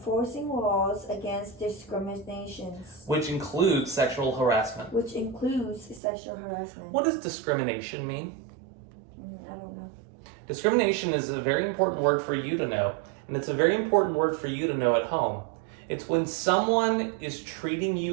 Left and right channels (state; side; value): drops out; left; at 6.0 s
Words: laws against discriminations, which includes sexual harassment. which includes sexual harassment. What does discrimination mean? I don't know. Discrimination is a very important word for you to know, and it's a very important word for you to know at home. It's when someone is treating